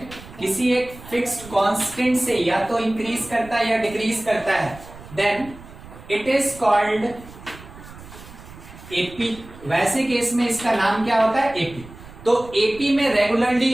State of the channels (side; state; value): right; noise; rumble, 18 dB below the sound